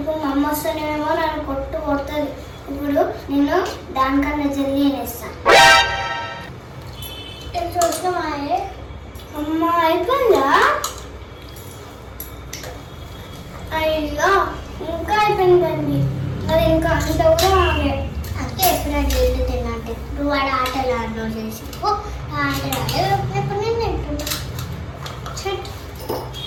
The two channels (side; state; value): both; identical; correlation 1.00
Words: మా అమ్మ వస్తేనేమో నన్ను కొడుతుంది. ఇప్పుడు నేను దానికన్నా జల్దీ వేస్తాను. చూసినామా అమ్మ? అయిపోయిందా? అయ్యో ఇంకా అయిపోయిందండి. అది ఇంకా అంత కూడా ఆగే. అంటే ఎప్పుడైనా జల్దీ తిన్నట్టు ఇప్పుడు వాడు ఆటలు ఆడలో చేసి ఆటలు ఎప్పుడు నేను తింటున్నా.